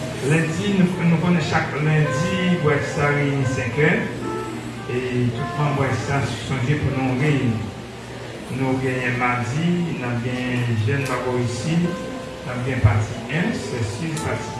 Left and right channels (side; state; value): both; identical; correlation 1.00